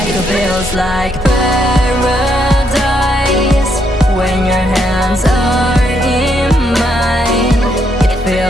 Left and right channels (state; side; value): normal; both; correlation 0.75